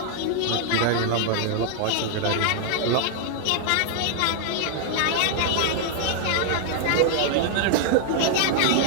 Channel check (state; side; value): different; both; correlation 0.00